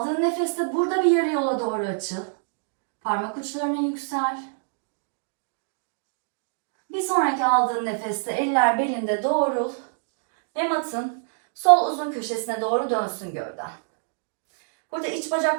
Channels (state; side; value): silent; left; digital silence